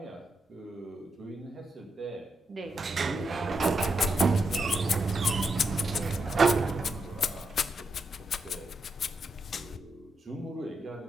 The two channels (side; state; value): both; normal; correlation 0.82